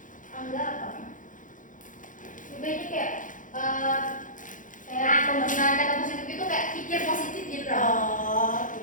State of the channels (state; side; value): late; right; 0.38 ms